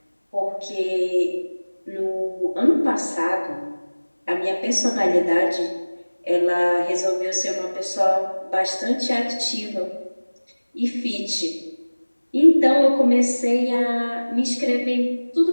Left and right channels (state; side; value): inverted; both; correlation -1.00